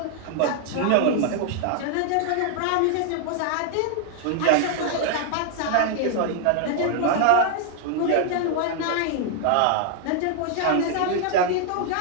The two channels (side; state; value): both; different; correlation 0.00